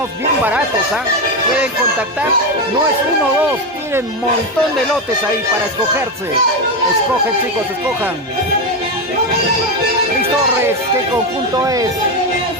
bien baratos, ¿ah? Pueden contactar, no es uno o dos, tienen un montón de lotes ahí para escogerse. Escogen, chicos, escojan. Luis Torres, ¿qué conjunto es?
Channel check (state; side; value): normal; both; correlation 0.12